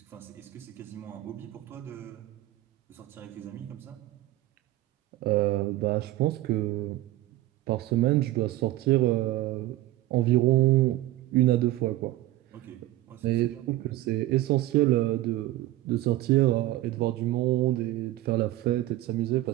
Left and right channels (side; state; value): left; quieter; 15.8 dB